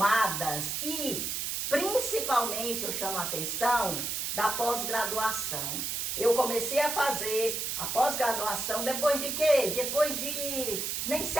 e Principalmente eu chamo a atenção da pós-graduação. Eu comecei a fazer a pós-graduação depois de quê? Depois de nem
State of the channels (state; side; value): noise; right; hiss, 2 dB below the sound